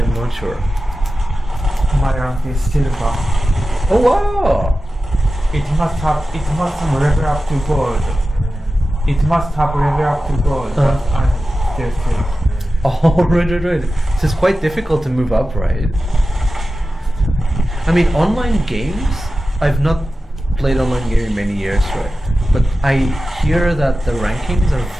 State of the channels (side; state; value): both; normal; correlation 0.94